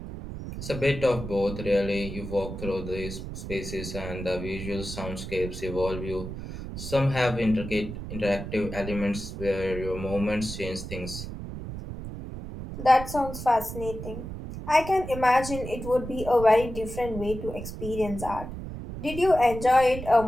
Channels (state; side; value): noise; right; rumble, 8 dB below the sound